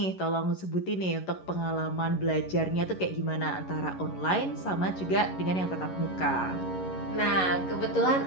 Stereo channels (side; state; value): right; late; 11 ms